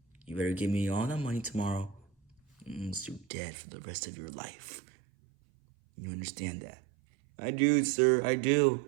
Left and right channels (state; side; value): drops out; left; at 3.2 s